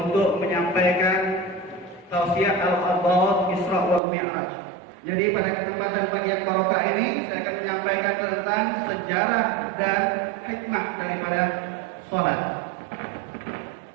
menyampaikan tausiah al-Abad Isra wal Mi'raj. Jadi pada kesempatan pagi yang barokah ini saya akan menyampaikan tentang sejarah dan hikmah daripada sholat.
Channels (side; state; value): left; drops out; at 4.0 s